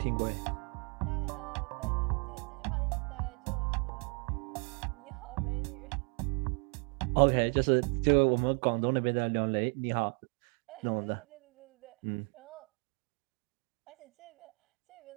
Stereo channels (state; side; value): quieter; left; 37.5 dB